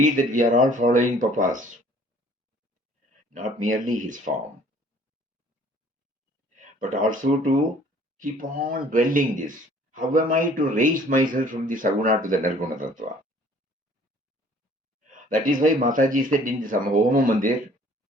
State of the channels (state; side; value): normal; both; correlation 0.55